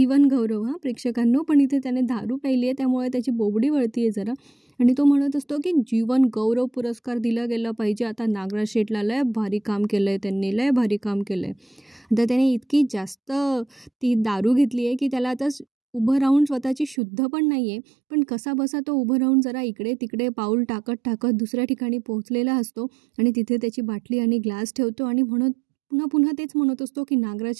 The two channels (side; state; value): left; drops out; at 16.9 s